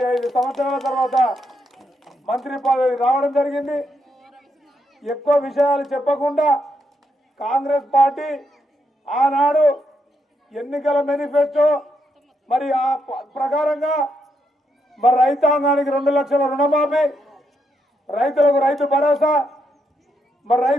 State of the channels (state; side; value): normal; both; correlation 0.79